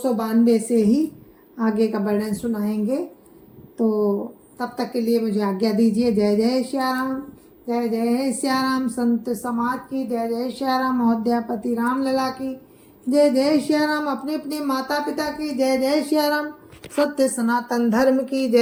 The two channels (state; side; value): identical; both; correlation 1.00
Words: से ही आगे का वर्णन सुनाएंगे। तो तब तक के लिए मुझे आज्ञा दीजिए। जय जय श्या राम, जय जय श्या राम। संत समाज की जय जय श्या राम। अयोध्यापति राम लला की जय जय श्या राम। अपने अपने माता पिता की जय जय श्या राम। सत्य सनातन धर्म की